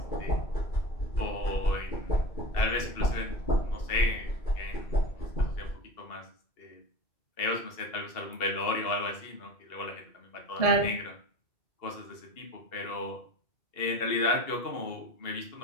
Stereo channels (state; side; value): late; right; 2.7 ms